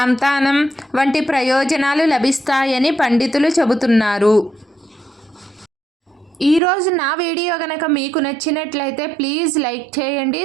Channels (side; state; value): left; drops out; at 6.6 s